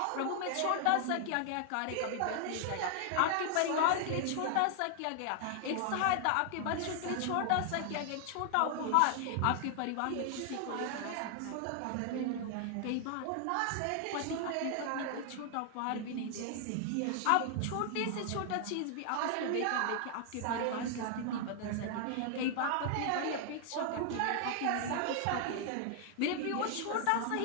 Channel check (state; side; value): different; both; correlation 0.00